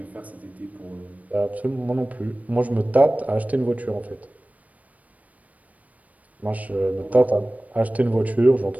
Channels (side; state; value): left; late; 0.070 ms